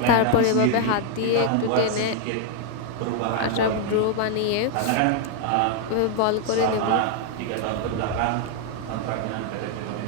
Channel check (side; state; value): both; different; correlation 0.00